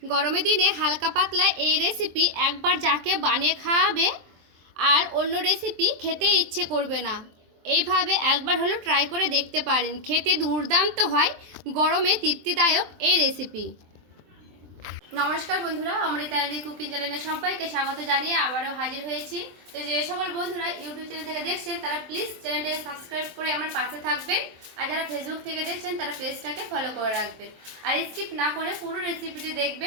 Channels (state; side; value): late; left; 23 ms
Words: গরমের দিনে হালকা পাতলা এই রেসিপি একবার যাকে বানিয়ে খাওয়াবে আর অন্য রেসিপি খেতে ইচ্ছে করবে না। এইভাবে একবার হলো ট্রাই করে দেখতে পারেন, খেতে দুর্দান্ত হয়, গরমে তৃপ্তিদায়ক এই রেসিপি। নমস্কার বন্ধুরা, অমৃতা কুকিং চ্যানেলে সবাইকে স্বাগত জানিয়ে আবারও হাজির হয়েছি। তো যে সকল বন্ধুরা ইউটিউব চ্যানেল থেকে দেখছেন তারা প্লিজ চ্যানেলটাকে সাবস্ক্রাইব করে আমার পাশে থাকবেন, আর যারা ফেসবুক থেকে দেখছেন তারা পেজটাকে ফলো করে রাখবেন, আর স্কিপ না করে পুরো রেসিপিটি